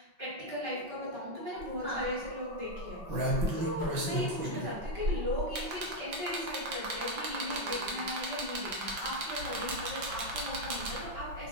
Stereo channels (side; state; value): left; late; 5.8 ms